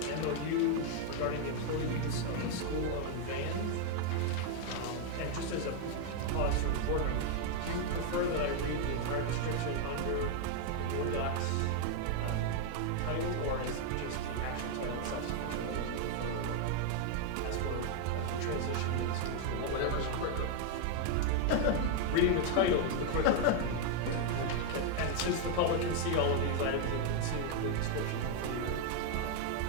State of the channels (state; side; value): different; both; correlation 0.00